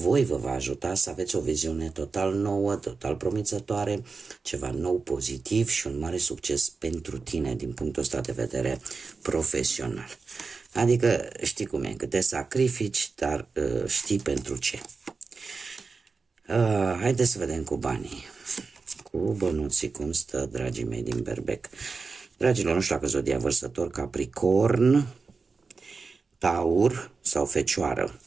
vă va ajuta să aveți o viziune total nouă, total promițătoare, ceva nou, pozitiv și un mare succes pentru tine din punctul ăsta de vedere profesional. Adică știi cum e, că te sacrifici, dar știi pentru ce. Haideți să vedem cu banii, cu bănuții, cum stă, dragii mei din Berbec. Dragilor, nu știu dacă zodia vărsător, Capricorn, Taur sau Fecioară,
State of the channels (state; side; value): quieter; left; 4.5 dB